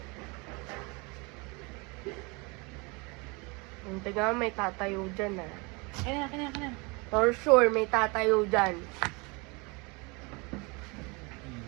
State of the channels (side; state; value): left; quieter; 28.3 dB